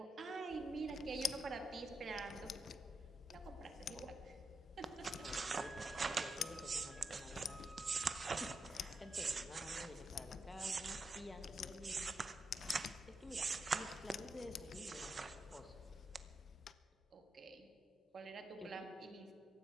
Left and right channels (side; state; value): both; normal; correlation 0.84